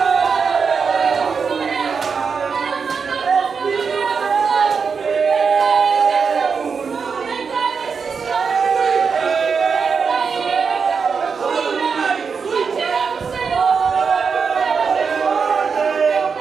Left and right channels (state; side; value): quieter; left; 5.7 dB